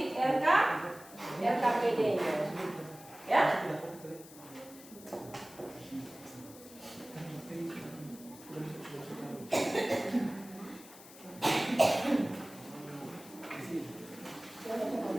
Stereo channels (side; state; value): left; noise; hiss, 19 dB below the sound